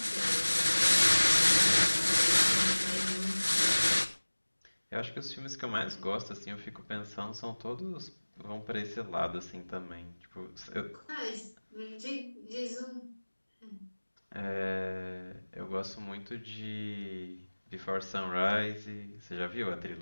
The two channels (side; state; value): both; inverted; correlation -1.00